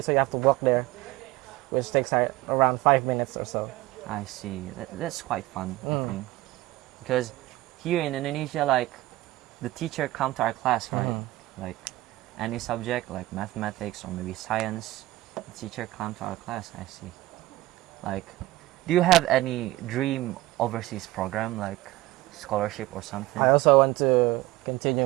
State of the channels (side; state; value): left; quieter; 17.9 dB